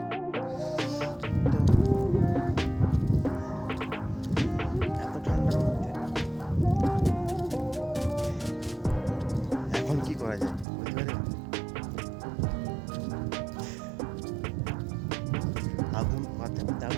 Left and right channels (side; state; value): left; drops out; at 10.7 s